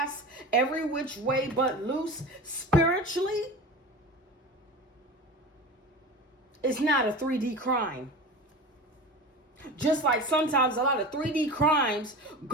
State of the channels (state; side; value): normal; both; correlation 0.32